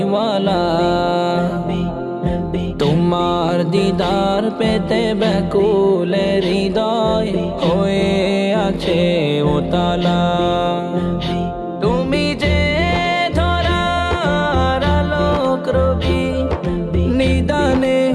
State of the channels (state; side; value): identical; both; correlation 1.00